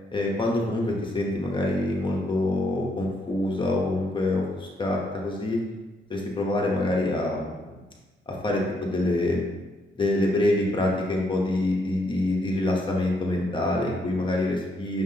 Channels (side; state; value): both; normal; correlation 0.75